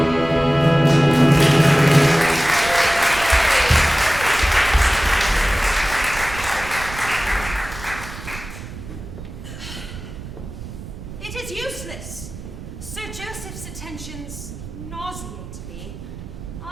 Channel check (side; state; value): right; noise; rumble, 12 dB below the sound